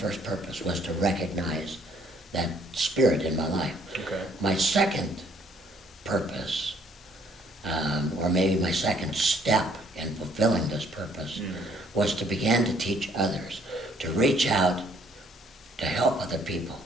purpose, was to recognize that spirit in my life. Okay. My second purpose, or maybe my second step in fulfilling this purpose, was to begin to teach others, to reach out, to help other people.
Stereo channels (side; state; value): both; normal; correlation 0.64